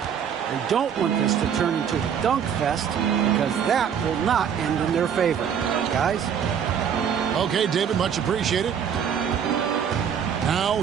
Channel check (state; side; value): quieter; left; 8.0 dB